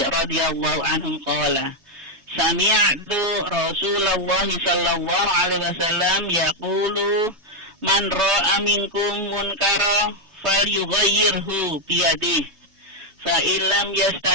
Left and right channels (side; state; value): left; late; 3.2 ms